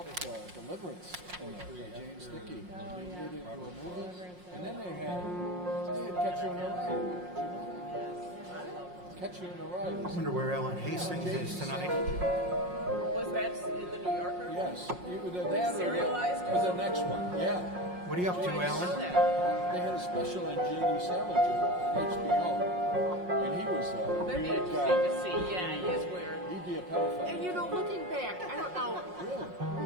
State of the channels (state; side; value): late; left; 5.6 ms